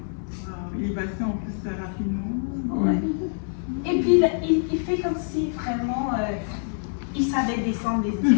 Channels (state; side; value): silent; right; digital silence